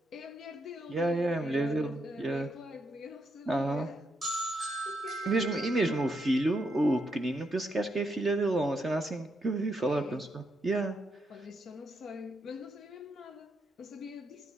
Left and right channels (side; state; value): both; normal; correlation 0.80